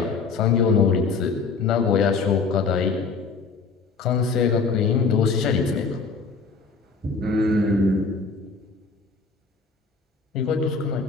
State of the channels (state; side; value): quieter; right; 4.6 dB